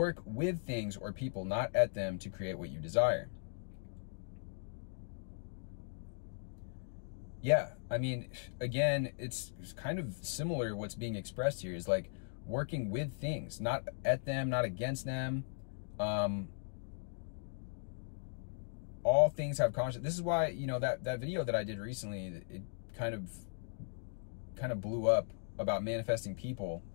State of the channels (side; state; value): right; silent; digital silence